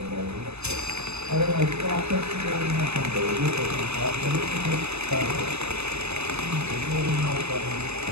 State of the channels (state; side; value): late; left; 0.80 ms